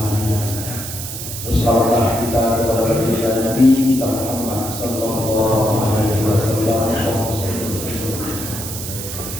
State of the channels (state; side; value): noise; right; hiss, 7 dB below the sound